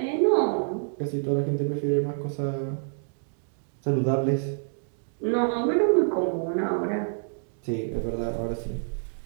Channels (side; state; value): left; silent; digital silence